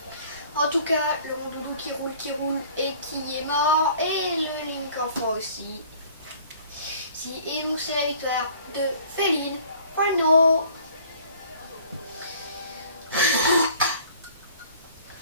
En tout cas, le Rondoudou qui roule et qui est mort, et le Link enfant aussi. Et donc c'est la victoire de Féline. Bueno.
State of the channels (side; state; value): both; inverted; correlation -0.52